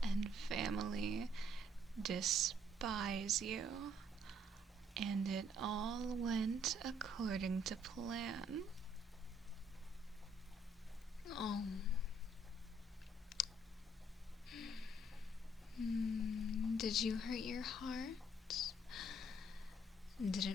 and family despise you, and it all went according to plan. Oh. Did you hurt your heart? Did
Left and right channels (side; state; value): both; normal; correlation 0.65